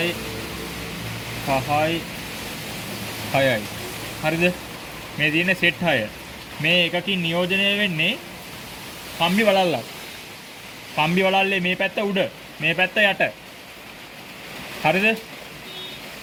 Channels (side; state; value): both; identical; correlation 1.00